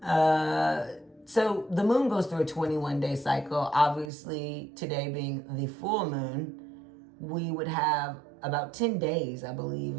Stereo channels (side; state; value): left; drops out; at 4.1 s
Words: So the moon goes through a 21-day cycle. Obviously, today being the full moon, we would have about 10 days, I believe,